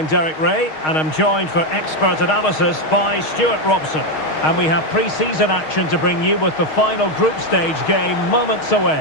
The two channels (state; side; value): late; right; 6.4 ms